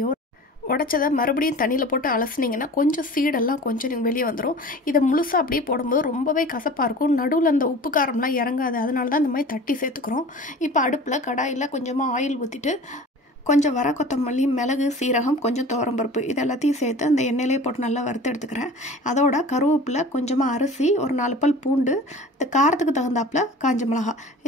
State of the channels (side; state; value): both; normal; correlation 0.40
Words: உடச்சதை மறுபடியும் தண்ணியில் போட்டு அலசினீங்கன்னா கொஞ்சம் சீடெல்லாம் கொஞ்சம் வெளியே வந்துடும். இதை முழுசாக அப்படியே போடும்போது ரொம்பவே கசப்பாக இருக்கும். நடுவில் அந்த உப்பு காரம்லாம் இறங்காது. அதனால தான் இந்த மாதிரி தட்டி சேர்த்துக்கிறோம். இப்போ அடுப்பில் கடாயில் கொஞ்சமாக ஆயில் ஊற்றிட்டு கொஞ்சம் வர கொத்தமல்லி, மிளகு, சீரகம், கொஞ்சம் துவரம்பருப்பு இது எல்லாத்தையும் சேர்த்து அந்த எண்ணெயிலே போட்டு நல்லா வறுத்து எடுத்துக்கிறேன். அதோட கருவேப்பிலை, கொஞ்சமாக அரிசி, ஒரு 4 பல் பூண்டு, இந்த காரத்துக்கு தகுந்தாப்பில் காஞ்ச மிளகா